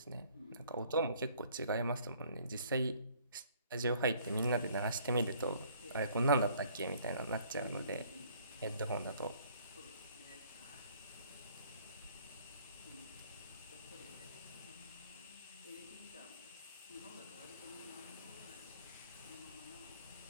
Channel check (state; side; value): inverted; both; correlation -0.59